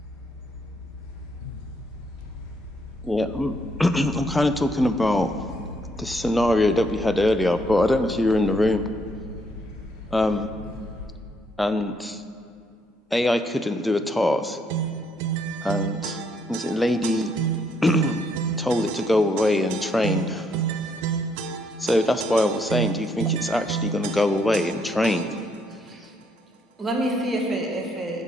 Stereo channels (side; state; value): both; normal; correlation 0.72